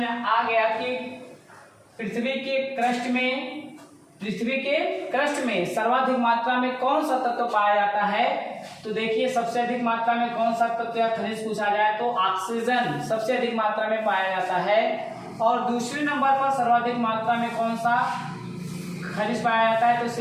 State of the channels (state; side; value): identical; both; correlation 1.00